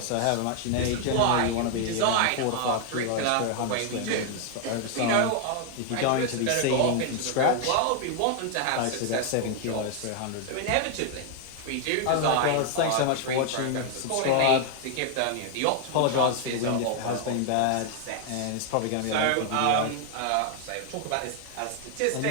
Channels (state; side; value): different; both; correlation 0.00